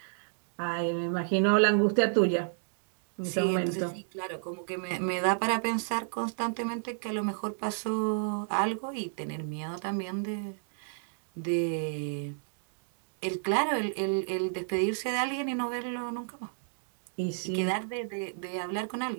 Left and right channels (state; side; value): silent; left; digital silence